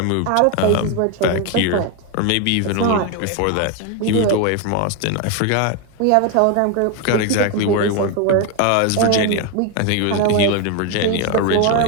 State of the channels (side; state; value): both; different; correlation 0.01